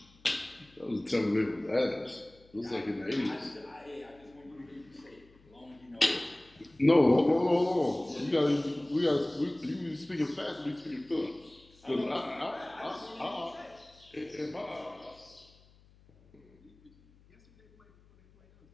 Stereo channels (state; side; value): noise; left; hum, 28 dB below the sound